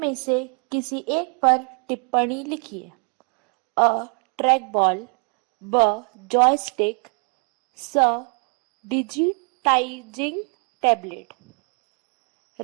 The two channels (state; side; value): quieter; left; 38.5 dB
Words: से किसी एक पर टिप्पणी लिखिए। अ, ट्रैक बॉल, ब, जॉयस्टिक, स, digitising tablet.